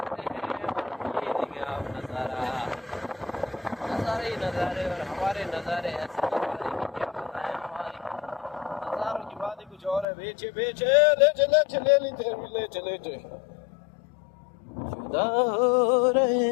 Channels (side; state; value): right; drops out; at 10.1 s